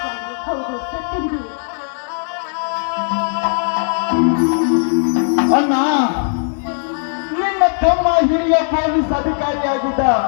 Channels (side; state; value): right; silent; digital silence